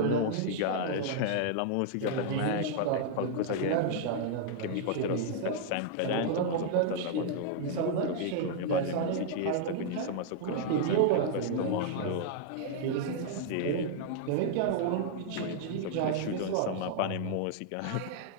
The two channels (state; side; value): different; both; correlation 0.00